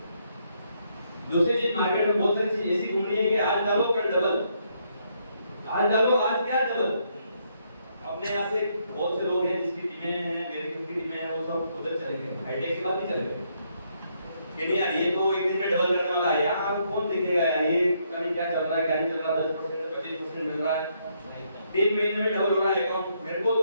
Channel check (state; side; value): inverted; both; correlation -0.74